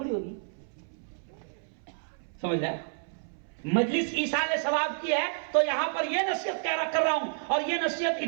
ہوگی، سمجھ رہا ہے؟ مجلس ایصال ثواب کی ہے، تو یہاں پر یہ نصیحت کر رہا ہوں، اور یہ نصیحت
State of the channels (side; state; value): left; silent; 58 dB below the other